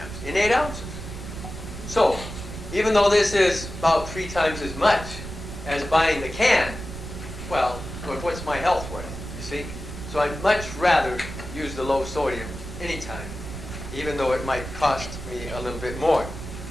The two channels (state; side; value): noise; right; rumble, 9 dB below the sound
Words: in 8 ounces. So even though this is about 3 times as much as buying the can, well, what's my health worth, you see? So I'd much rather use the low sodium anytime, even though it might cost me a little bit more.